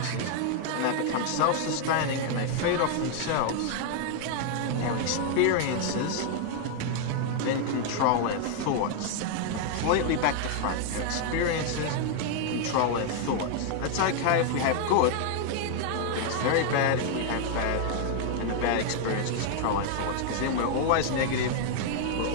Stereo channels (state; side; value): different; both; correlation 0.00